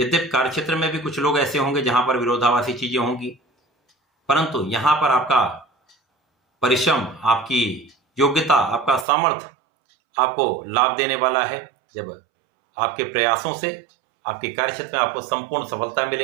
कार्यक्षेत्र में भी कुछ लोग ऐसे होंगे जहां पर विरोधाभासी चीजें होंगी, परंतु यहां पर आपका परिश्रम, आपकी योग्यता, आपका सामर्थ्य आपको लाभ देने वाला है। जब आपके प्रयासों से आपके कार्यक्षेत्र में आपको संपूर्ण सफलता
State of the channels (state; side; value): drops out; left; at 9.1 s